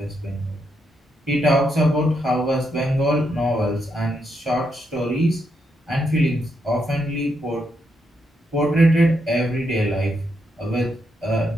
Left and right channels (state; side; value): normal; both; correlation 0.80